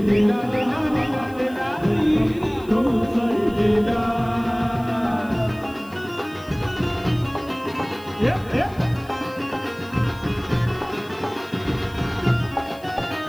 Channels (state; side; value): noise; left; hiss, 25 dB below the sound